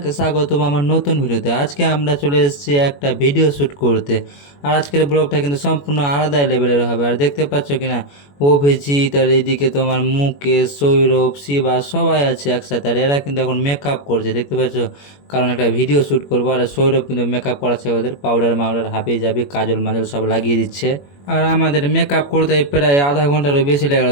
স্বাগতম আমার নতুন ভিডিওতে। আজকে আমরা চলে এসেছি একটা ভিডিও শ্যুট করতে। আর আজকের ব্লগটা কিন্তু সম্পূর্ণ আলাদা লেভেলের হবে। আর দেখতে পাচ্ছ কিনা, অভিজিৎ আর এইদিকে তোমার মুকেশ, সৌরভ, শিবা সবাই আছে একসাথে। আর এরা কিন্তু এখন মেকআপ করছে, দেখতে পাচ্ছ, কারণ একটা ভিডিও শ্যুট করবো। আর সৌরভ কিন্তু মেকআপ করাচ্ছে, ওদের পাউডার মাউডার হাবি জাবি কাজল মাজল সব লাগিয়ে দিচ্ছে। আর আমাদের মেকআপ করতে প্রায় আধা ঘন্টারও বেশি লেগে গেল,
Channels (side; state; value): right; late; 21 ms